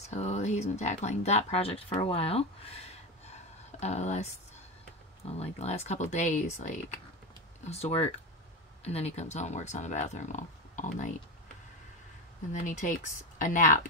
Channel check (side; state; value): both; normal; correlation 0.19